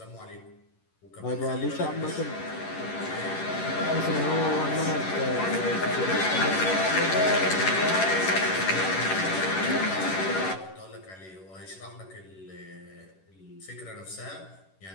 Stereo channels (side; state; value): right; late; 11 ms